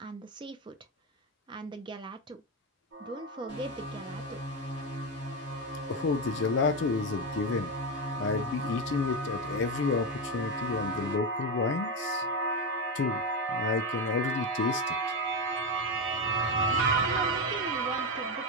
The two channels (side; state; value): both; normal; correlation 0.12